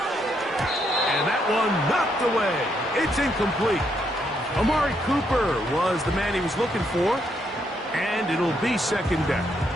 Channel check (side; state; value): both; normal; correlation 0.76